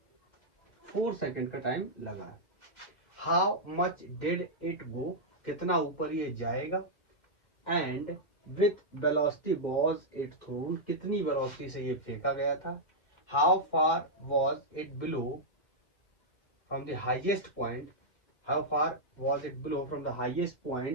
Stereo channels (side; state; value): right; late; 1.8 ms